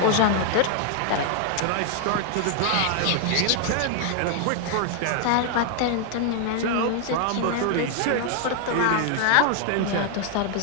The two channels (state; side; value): different; both; correlation 0.00